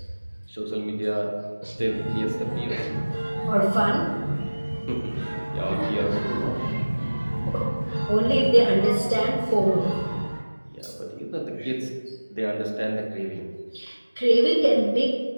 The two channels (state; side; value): inverted; both; correlation -1.00